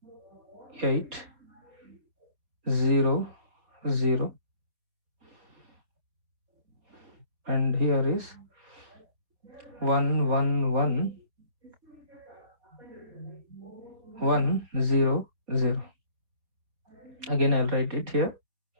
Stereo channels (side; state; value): left; late; 4.3 ms